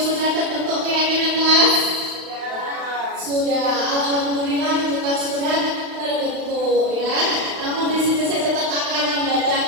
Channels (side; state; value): left; late; 35 ms